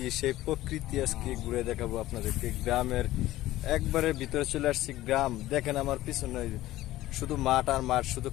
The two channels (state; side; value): quieter; right; 15.8 dB